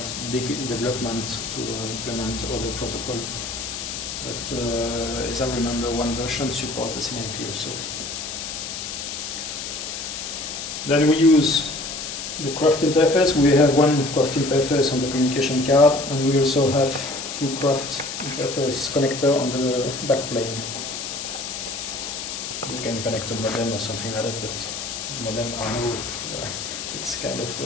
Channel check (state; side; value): noise; left; hiss, 6 dB below the sound